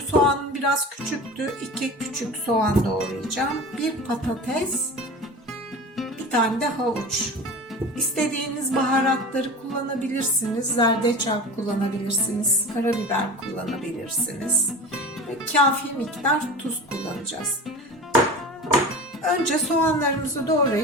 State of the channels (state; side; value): normal; both; correlation 0.33